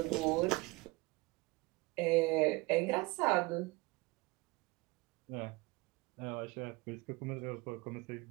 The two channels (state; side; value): quieter; left; 23.6 dB